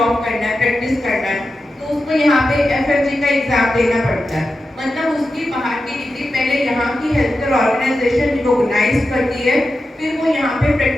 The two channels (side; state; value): both; normal; correlation 0.91